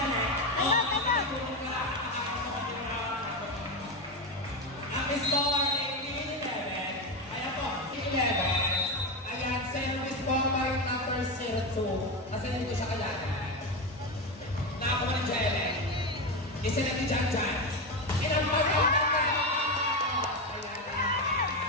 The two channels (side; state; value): both; normal; correlation 0.15